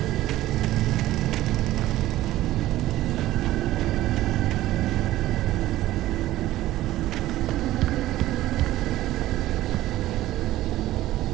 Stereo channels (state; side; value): quieter; left; 15.2 dB